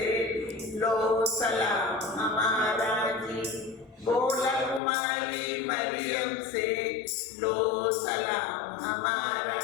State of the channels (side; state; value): right; drops out; at 4.8 s